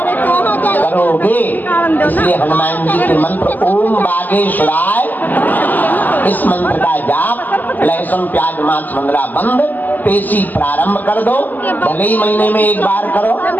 करोगे। इसलिए हनुमान जी के मंत्र ओम बागेश्वराय, इस मंत्र का जाप, लहसुन प्याज मांस मंदरा बंद, पेशी प्रारंभ कर दो। भले ही महीने में एक बार करो,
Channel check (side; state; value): right; late; 0.084 ms